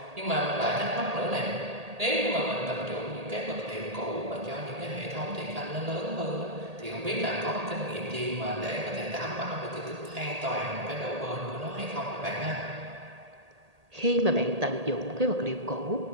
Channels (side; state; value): left; late; 1.8 ms